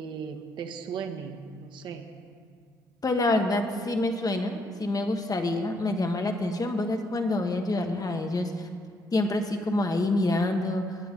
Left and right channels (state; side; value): normal; both; correlation 0.73